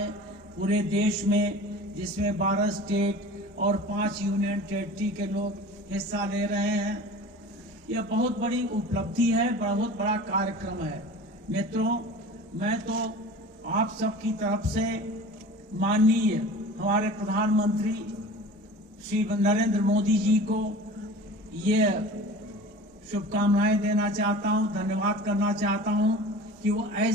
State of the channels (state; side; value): normal; both; correlation 0.39